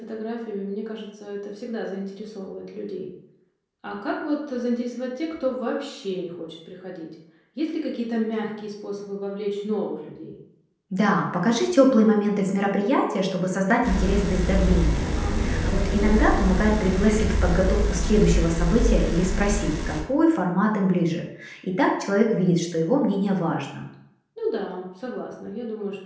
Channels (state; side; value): identical; both; correlation 1.00